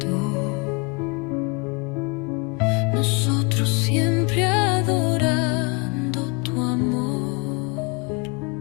nosotros siempre adorando tu amor.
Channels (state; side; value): quieter; right; 31.2 dB